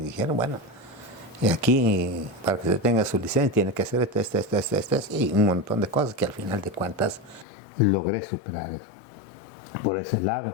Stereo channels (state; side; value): drops out; right; at 7.5 s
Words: dijeron, bueno, y aquí, para que se tenga su licencia, tiene que hacer esto, y un montón de cosas que al final de cuentas logré superar eso. Por ese